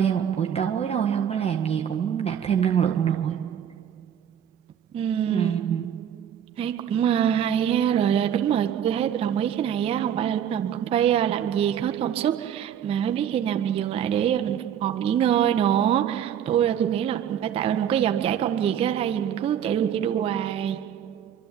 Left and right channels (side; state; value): left; quieter; 9.2 dB